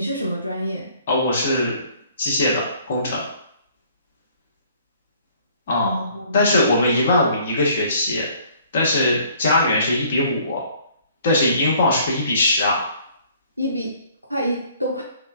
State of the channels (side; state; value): both; inverted; correlation -0.58